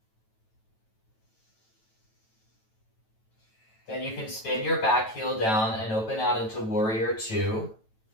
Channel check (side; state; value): right; late; 9.1 ms